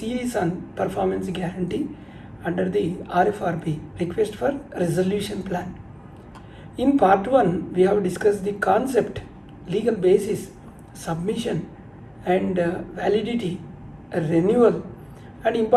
on performance guarantee under the RFRP, request for resolution plan. In part 1, we have discussed the concept, legal basis, submission and validity, renewal and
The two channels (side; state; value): both; identical; correlation 1.00